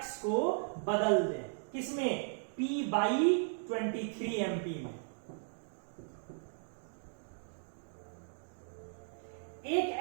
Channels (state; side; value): silent; left; digital silence